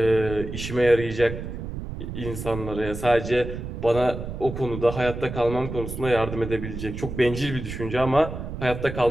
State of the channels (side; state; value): right; noise; rumble, 8 dB below the sound